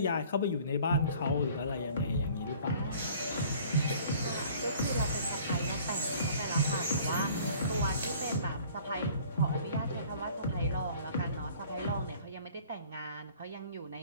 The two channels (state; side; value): inverted; both; correlation -0.51